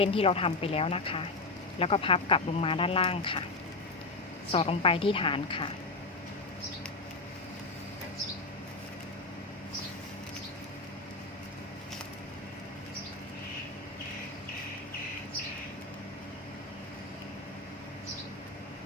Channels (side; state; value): right; quieter; 3.4 dB